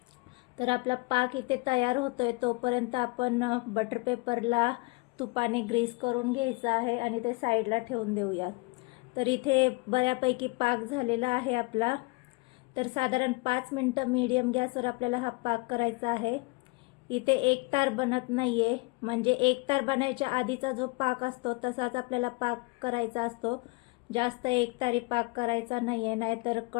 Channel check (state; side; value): quieter; right; 26.2 dB